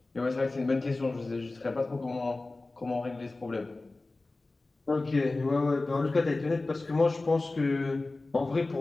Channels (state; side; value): quieter; right; 3.2 dB